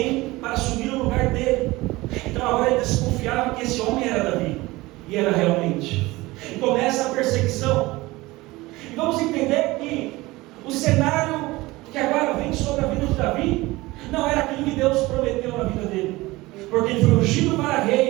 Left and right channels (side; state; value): left; quieter; 20.3 dB